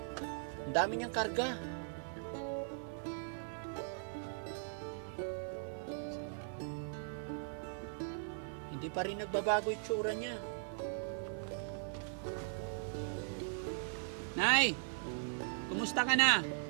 Ang dami niyang karga. Hindi pa rin nagbabago yung tsura niya. Nay! Kumusta ka na?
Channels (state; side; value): silent; left; 52 dB below the other